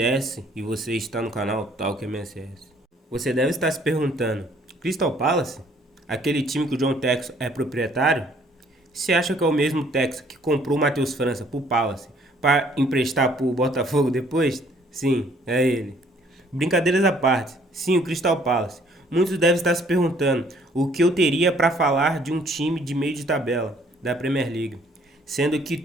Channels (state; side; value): normal; both; correlation 0.61